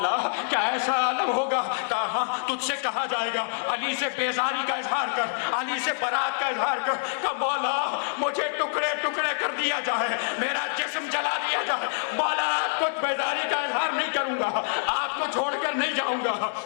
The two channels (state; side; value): silent; right; digital silence